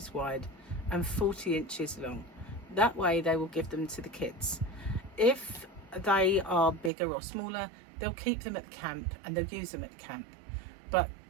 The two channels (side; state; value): left; drops out; at 6.9 s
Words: wide and 40 inches long. That way they will give them to the kids. If they are bigger or smaller, they'll keep them at the camp and they'll use them at the camp. But